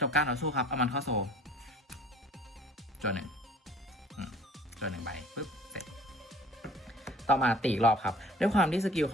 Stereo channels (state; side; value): normal; both; correlation 0.49